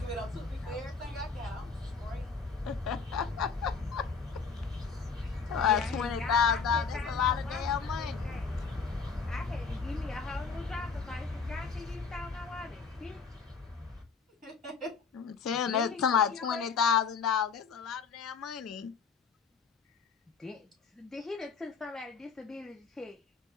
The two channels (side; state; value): right; quieter; 5.4 dB